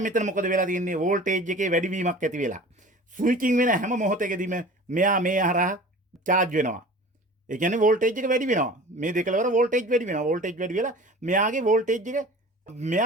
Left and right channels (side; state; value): both; normal; correlation 0.41